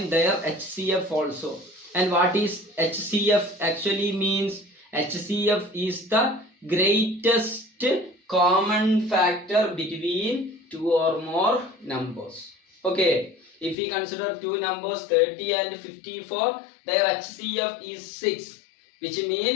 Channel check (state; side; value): drops out; right; at 13.8 s